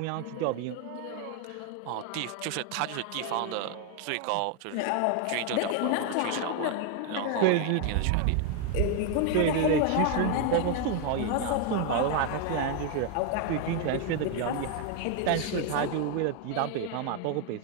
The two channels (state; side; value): different; both; correlation 0.01